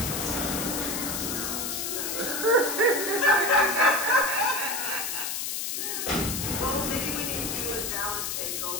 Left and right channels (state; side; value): noise; left; hiss, 2 dB below the sound